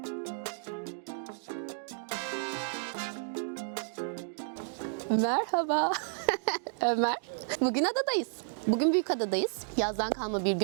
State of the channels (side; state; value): left; silent; digital silence